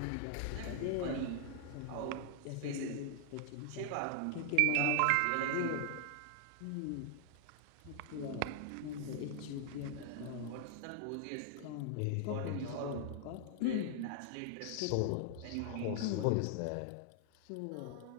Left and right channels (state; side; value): different; both; correlation 0.00